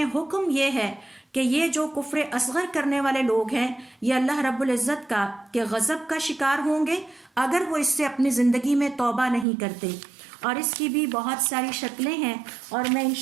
حکم یہ ہے کہ یہ جو کفر اصغر کرنے والے لوگ ہیں یہ اللہ رب العزت کا کہ غضب کا شکار ہوں گے اگر وہ اس سے اپنی زندگی میں توبہ نہیں کرتے. اور اس کی بھی بہت ساری شکلیں ہیں اور میں ان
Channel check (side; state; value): left; drops out; at 9.5 s